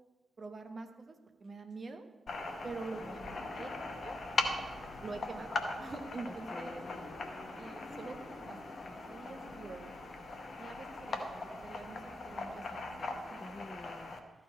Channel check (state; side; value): normal; both; correlation 0.84